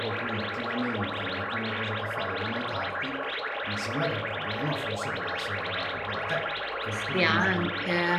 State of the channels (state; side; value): identical; both; correlation 1.00